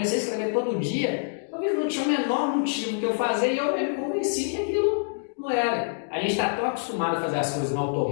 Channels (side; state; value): right; silent; digital silence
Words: a escrever todo dia, talvez não tinha o menor motivo que eu fazer e eu me convenci que aquilo não era. A gente está tão acostumado a fazer as coisas no